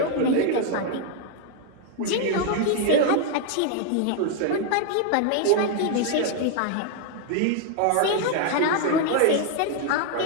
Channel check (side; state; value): both; different; correlation 0.00